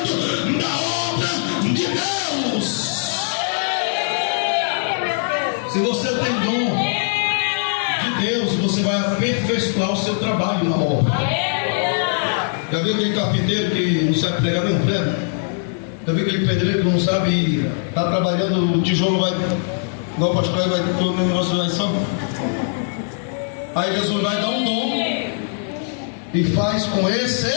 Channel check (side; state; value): right; silent; digital silence